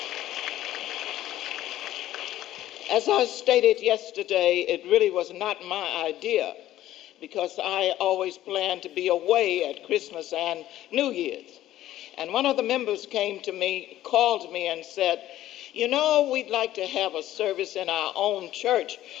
As I stated yesterday, it really was not my idea because I always planned to be away at Christmas and New Year's. And one of the members came to me, called me and said, we'd like to have a service in our own church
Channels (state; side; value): quieter; right; 13.8 dB